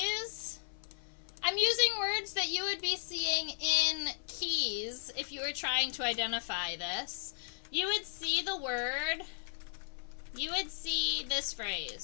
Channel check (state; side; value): silent; right; 54 dB below the other